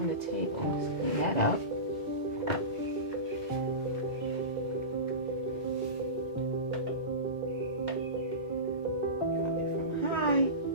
the table, let's clean that up.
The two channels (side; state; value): left; late; 2.1 ms